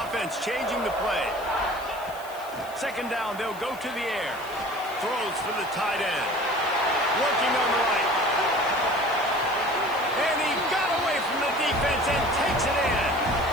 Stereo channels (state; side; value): noise; left; hiss, 20 dB below the sound